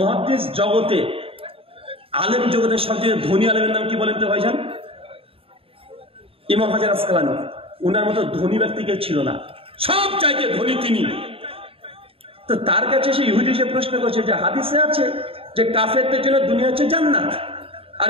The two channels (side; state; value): left; late; 0.27 ms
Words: জগতে, আলেম জগতের সবচেয়ে ধনী আলেমের নাম কি বলেন তো ভাইজান? ইমাম হাজার আসকালানি। উনার মতো ধনী ব্যক্তি কেউ ছিল না, সব চাইতে ধনী তিনি। তো তার কাছে সে ইহুদি এসে প্রশ্ন করছে যে হাদিসে আছে যে কাফেরদের জন্য দুনিয়া হচ্ছে জান্নাত আর